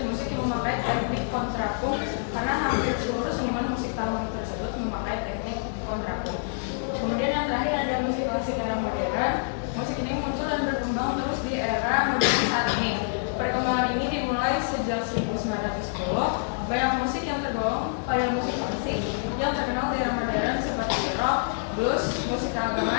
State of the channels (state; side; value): silent; right; 60 dB below the other